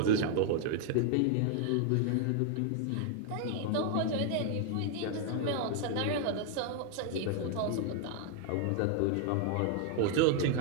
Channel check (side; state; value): both; different; correlation 0.00